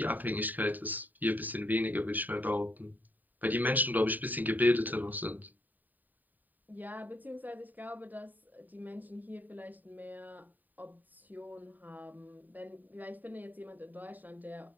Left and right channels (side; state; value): left; late; 0.087 ms